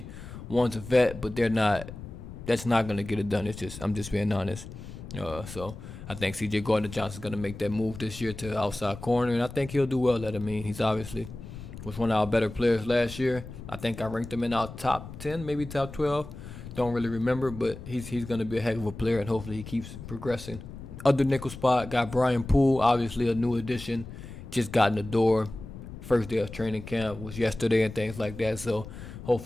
one's a vet, but they're not. That's not going to get it done. I'm just being honest. So I think C.J. Gardner-Johnson's going to make that move this year to outside corner, and I think he'll do well at it. I mean, he's obviously was one of our better players last year. I think I ranked him in our top 10, maybe top 12. Don't really remember, but he's going to be a heck of a player, and hopefully he keeps progressing. Other nickel spot, got Brian Poole, obviously a new addition, just got in the door. First day of training camp was yesterday and things like that, so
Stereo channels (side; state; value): left; noise; rumble, 12 dB below the sound